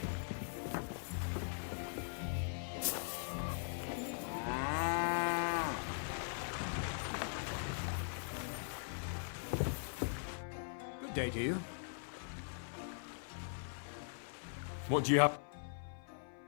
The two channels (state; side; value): silent; right; 50 dB below the other